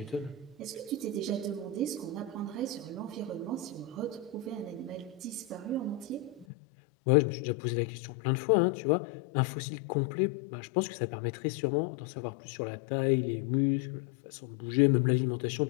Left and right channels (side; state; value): right; drops out; at 6.5 s